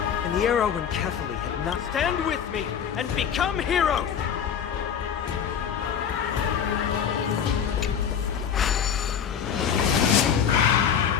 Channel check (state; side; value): quieter; right; 8.0 dB